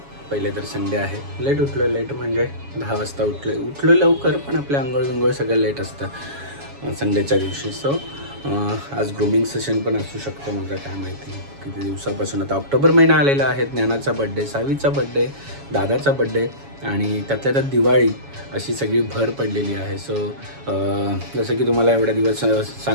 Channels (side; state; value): left; late; 7.2 ms